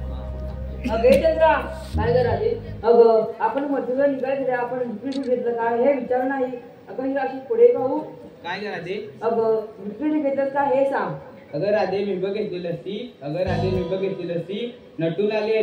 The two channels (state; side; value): identical; both; correlation 1.00